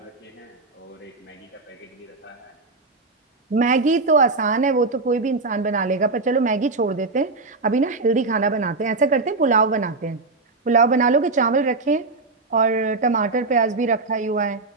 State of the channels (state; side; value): quieter; left; 3.6 dB